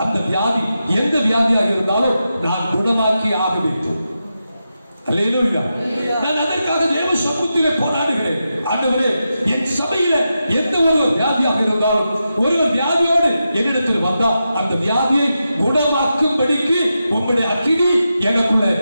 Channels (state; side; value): inverted; both; correlation -0.89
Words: அந்த வியாதி எந்த வியாதியாக இருந்தாலும் நான் குணமாக்கி ஆக வேண்டும். அல்லேலூயா. நான் அதற்காக தேவ சமூகத்திலே போராடுகிறேன். ஆண்டவரே, என் சபையில எந்த ஒரு வியாதியாக இருந்தாலும் ஒருவர் வியாதியோடு என்னிடத்தில் வந்தா அந்த வியாதியை குணமாக்கும்படிக்கு உங்களுடைய அக்கினி எனக்குள்ள